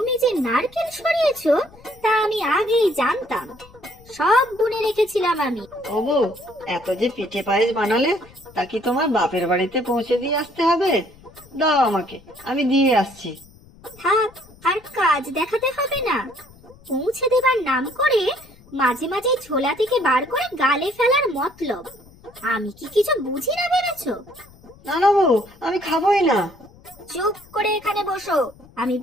যে নারকেল সরিয়েছো তা আমি আগেই জানতাম, সব গুনে রেখেছিলাম আমি। ও বউ, এত যে পিঠে পায়েস বানালে, তা কি তোমার বাপের বাড়িতে পৌঁছে দিয়ে আসতে হবে? দাও আমাকে, আমি দিয়ে আসছি। থাক, আর কাজ দেখাতে হবে না। পৌঁছে দেবার নাম করে মাঝে মাঝে ঝোলা থেকে বার করে গালে ফেলার মতলব। আমি কি কিছু বুঝি না ভেবেছো? না না বউ, আমি খাবোই না। চুপ করে এখানে বসো, আমি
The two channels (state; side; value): noise; left; rumble, 25 dB below the sound